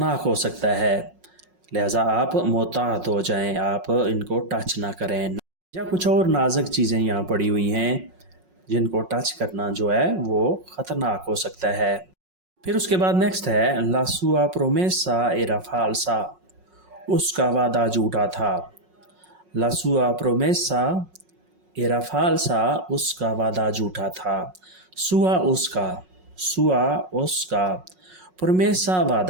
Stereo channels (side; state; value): left; late; 5.5 ms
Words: ہو سکتا ہے. لہٰذا آپ محتاط ہو جائیں, آپ ان کو ٹچ نہ کریں. یا کچھ اور نازک چیزیں یہاں پڑی ہوئی ہیں جن کو ٹچ کرنا جو ہے وہ خطرناک ہو سکتا ہے. پھر اس کے بعد نیکسٹ ہے La sua promessa era falsa. اس کا وعدہ جھوٹا تھا. La sua promessa era falsa. اس کا وعدہ جھوٹا تھا. sua اس کا. sua اس کا. promessa